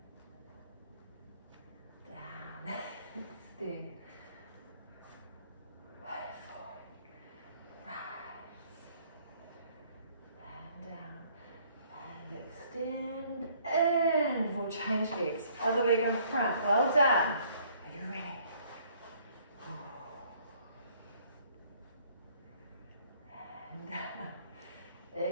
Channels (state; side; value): inverted; both; correlation -0.61